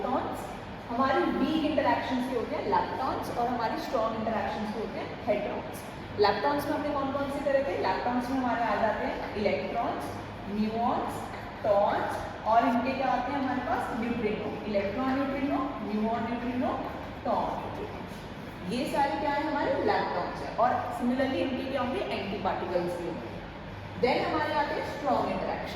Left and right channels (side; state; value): both; identical; correlation 1.00